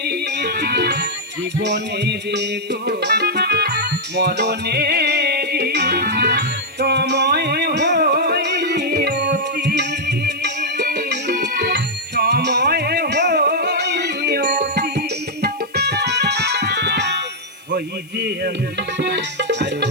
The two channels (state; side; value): noise; left; hiss, 28 dB below the sound